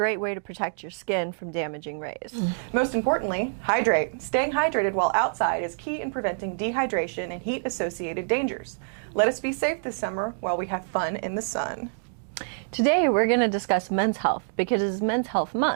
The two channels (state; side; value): silent; left; digital silence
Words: way to protect your skin from damaging rays. Most importantly, hydrate. Staying hydrated while outside is key in preventing dehydration and heat-associated dangers. Let us be safe this summer while we have fun in the sun. Today, we're going to discuss men's health because it is Men's Health